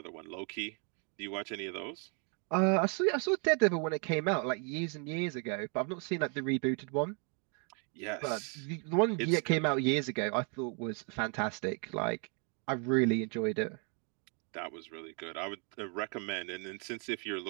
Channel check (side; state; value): left; quieter; 37.9 dB